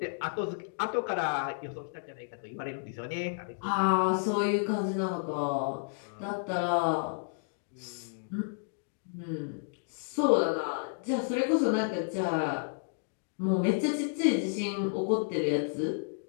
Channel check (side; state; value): right; silent; digital silence